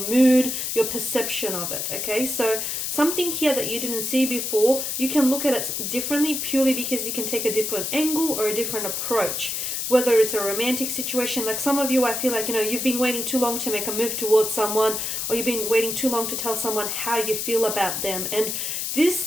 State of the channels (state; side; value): noise; left; hiss, 2 dB below the sound